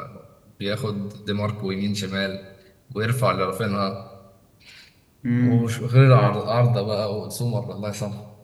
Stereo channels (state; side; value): identical; both; correlation 1.00